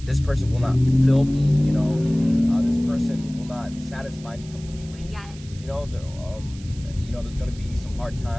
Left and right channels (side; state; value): right; noise; hiss, 21 dB below the sound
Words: this person will not fill me, you know, this person will not satisfy me completely. Yes. You know, there's going to be some hard